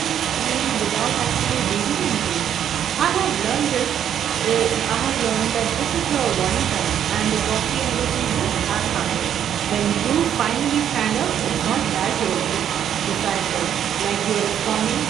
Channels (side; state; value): left; quieter; 9.6 dB